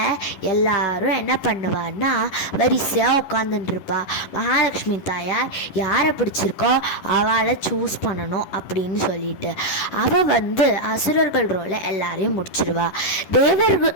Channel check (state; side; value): late; right; 11 ms